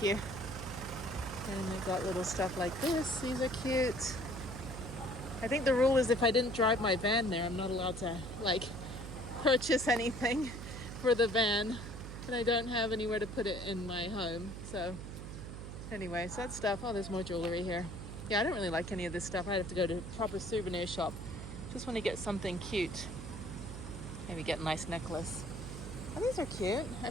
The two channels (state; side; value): noise; right; hum, 9 dB below the sound